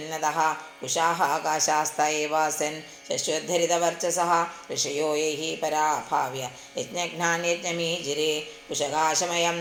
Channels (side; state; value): both; identical; correlation 1.00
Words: കുശാः ആകാശാസ്ത ഏവാസन् ശശ്വദ്ധരിതവർച്ചസः ഋഷയോ യൈः പരാഭാവ്യ യജ്ഞഘ്നാന്യജ്ഞമീജിരെ കുശകാശമയം